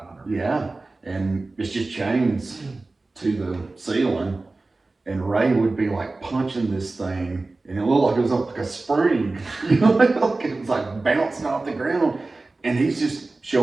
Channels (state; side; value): quieter; left; 3.3 dB